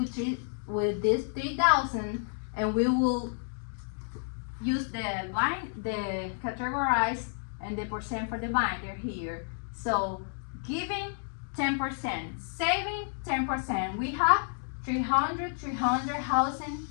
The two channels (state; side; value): silent; right; digital silence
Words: this 3,000, and we will use the categorize and the percent for the binder here. So giving 10%, saving 10%. We have 300, housing